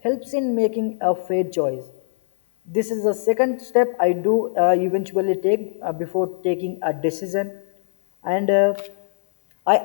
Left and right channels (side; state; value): right; silent; 64 dB below the other